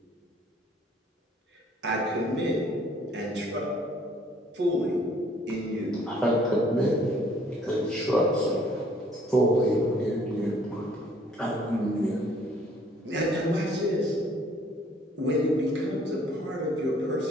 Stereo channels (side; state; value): both; normal; correlation 0.60